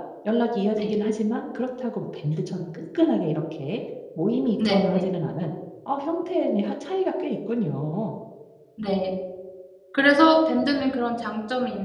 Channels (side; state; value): both; identical; correlation 1.00